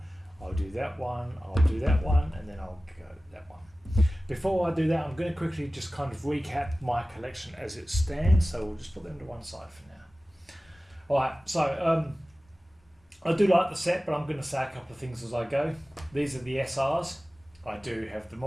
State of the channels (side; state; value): both; normal; correlation 0.96